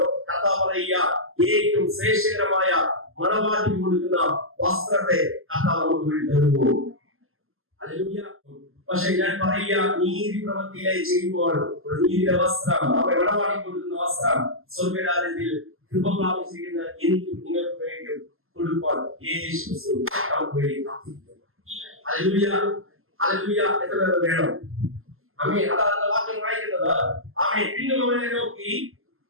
കർത്താവ് പറയുക, ഏറ്റവും ശ്രേഷ്ഠകരമായ മണവാട്ടി കൊടുക്കുന്ന വസ്ത്രത്തെ കർത്താവ് നമുക്ക് വേണ്ടി തരുന്നു. ഹല്ലേലൂയ. പക്ഷെ ഞാൻ പറയുക, നീതി പ്രവൃത്തിയിലായി ചെയ്യുമ്പോൾ ഒരു നീതിയുടെ വസ്ത്രം, മണവാട്ടി കൊടുക്കുന്ന വസ്ത്രം സ്വർഗ്ഗരാജ്യത്തിൽ കൃപ പ്രാപിച്ചിരിക്കുന്ന എനിക്കും നിങ്ങൾക്കും വേണ്ടിയും கொடுப்பான். இயேசு கிறிஸ்து நமக்கு வேண்டி காத்திருக்கிறார். ஹல்லேலூயா, ஹல்லேலூயா. எத்தனை பேர் வேணும்? ஆமென். அதான் அந்த வாக்கியம் வாയിക്കുന്നത്. ஆமென். பின்னும் அவனை നോക്കി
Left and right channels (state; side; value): late; left; 0.61 ms